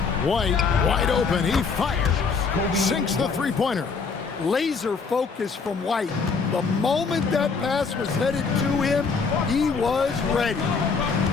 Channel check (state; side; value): quieter; right; 5.1 dB